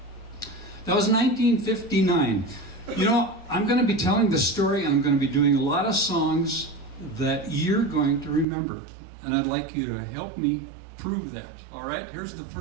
That was 1959. You know, I'm going to be telling the story, and I'm going to be doing a lot of songs that you're going to remember. And I'd like you to help me prove that. All right, here's the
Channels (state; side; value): drops out; left; at 8.5 s